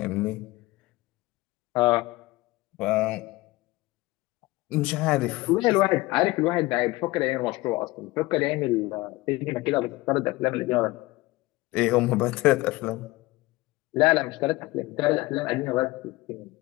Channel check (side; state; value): right; quieter; 20.3 dB